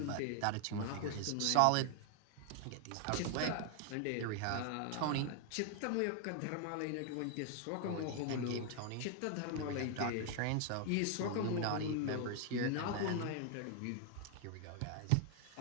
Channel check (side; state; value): both; different; correlation 0.00